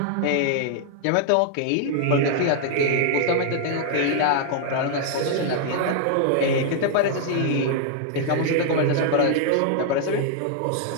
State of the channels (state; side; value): different; both; correlation 0.00